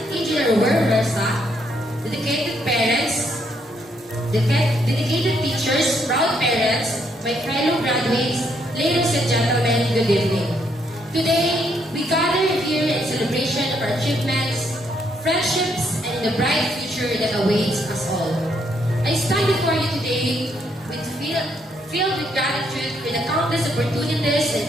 Engineer Wer Versa, dedicated parents, dedicated teachers, proud parents, my fellow graduates, ladies and gentlemen, good evening. Today, we gather here in celebration of our achievements, friendships, and the bright future that awaits us all. I stand before you today filled with gratitude for the countless opportunities and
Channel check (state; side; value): normal; both; correlation 0.73